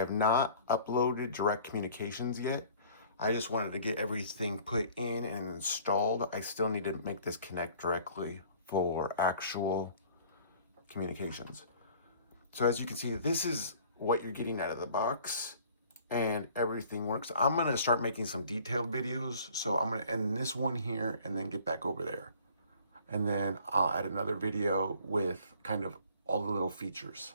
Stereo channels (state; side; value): inverted; both; correlation -0.52